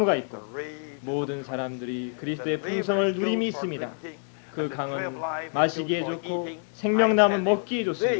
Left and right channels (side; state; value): right; silent; 60 dB below the other